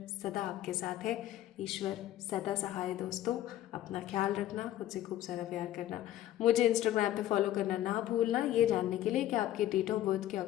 सदा आपके साथ है, ईश्वर सदा सहाय। दोस्तों अपना ख्याल रखना, खुद से खूब सारा प्यार करना। मुझे इंस्टाग्राम पे फॉलो करना ना भूलना, ये जानने के लिए कि आपके डेट ऑफ बर्थ के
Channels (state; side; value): quieter; right; 13.2 dB